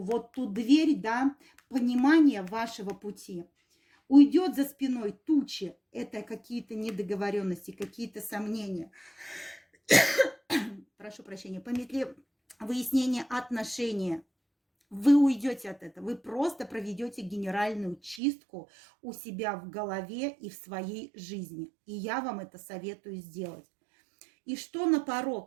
вот ту дверь, да, понимания вашего пути. Уйдет за спиной тучи, это какие-то недоговоренности, какие-то сомнения. Прошу прощения, по метле выяснения отношения. Вы уйдете от этого, вы просто проведете генеральную чистку у себя в голове и в своей жизни. И я вам это советую сделать. И что на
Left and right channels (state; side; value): drops out; left; at 18.2 s